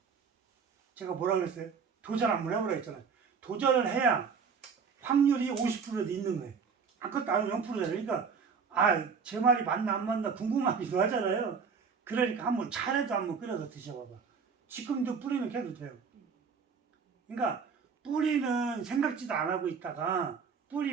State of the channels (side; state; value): left; quieter; 5.8 dB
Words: 제가 뭐라 그랬어요? 도전 한번 해보라 했잖아요. 도전을 해야 확률이 50%도 있는 거예요. 아무것도 안 하면 0%잖아요. 그러니까 제 말이 맞나 안 맞나 궁금하기도 하잖아요. 그러니까 한번 차라도 한번 끓여서 드셔봐봐. 지금도 뿌리는 캐도 돼요. 그러니까 뿌리는 생각지도 안 하고 있다가